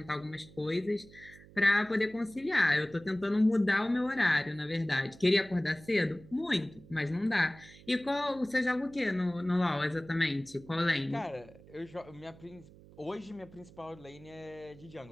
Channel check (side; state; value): right; noise; hum, 22 dB below the sound